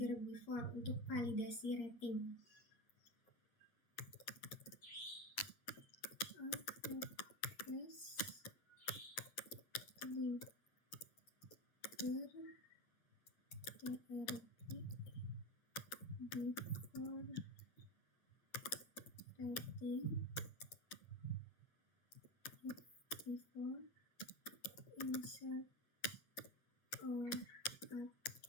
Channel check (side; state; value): right; late; 8.6 ms